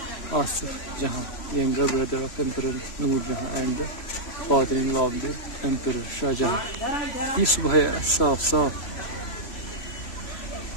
Asif Jahan, younger brother of Emperor Noor Jahan and the father-in-law of the Emperor Shah Jahan. ये सुबह है साफ साफ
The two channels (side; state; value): right; late; 3.0 ms